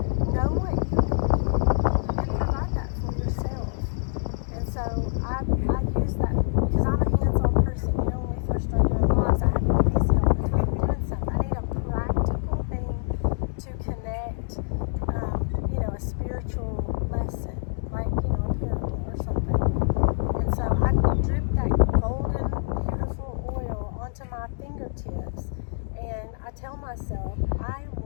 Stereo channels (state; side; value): silent; right; digital silence